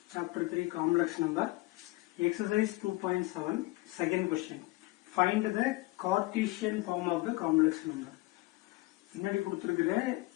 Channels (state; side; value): quieter; right; 20.9 dB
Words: chapter 3, complex number, exercise 2.7, second question. Find the Cartesian form of the complex number. முன்னாடி கொடுத்திருக்கிற